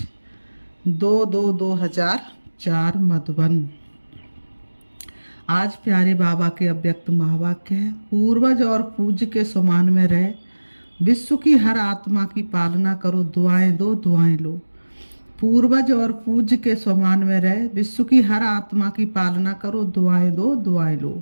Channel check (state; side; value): inverted; both; correlation -1.00